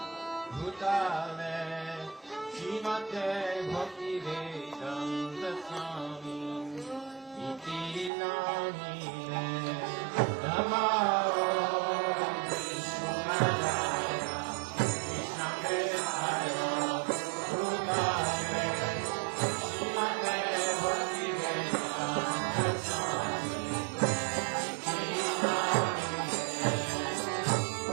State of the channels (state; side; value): drops out; left; at 8.1 s